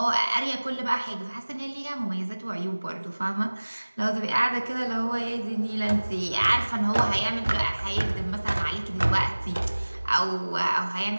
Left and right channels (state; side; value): inverted; both; correlation -1.00